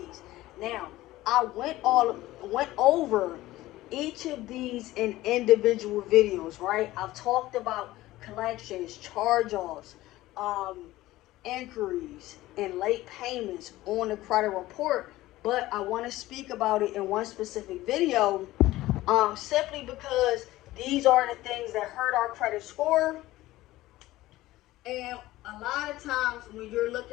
Now, I went over each of these in individual videos, right? I've talked about collections, charge-offs, inquiries and late payments on the credit report, but I want to speak about it in one specific video, simply because these are the things that hurt our credit score. And a lot of times when you're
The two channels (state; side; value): quieter; right; 16.9 dB